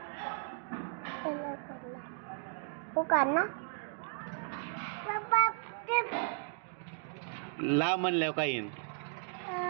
पुकार ना ला म्हणल्यावर काय येईन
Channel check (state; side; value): silent; left; 54 dB below the other